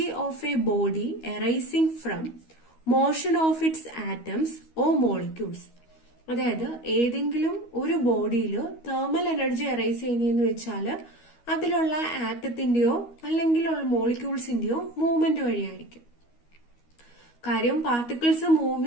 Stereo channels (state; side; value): late; right; 13 ms